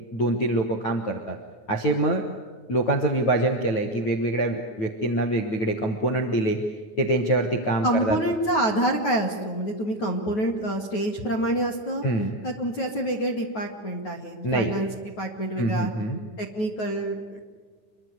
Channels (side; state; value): right; late; 9.4 ms